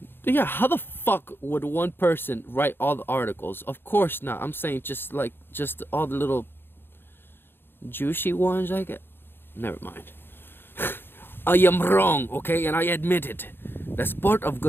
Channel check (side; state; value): right; late; 0.10 ms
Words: yeah, how the fuck would one person write all the articles? Of course not. I'm saying just all the little juicy ones I get. Never mind. I am wrong, okay, and I admit it. That's part of